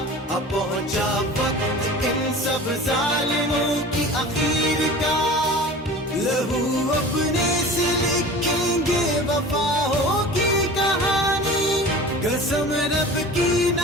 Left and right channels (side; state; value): both; normal; correlation 0.39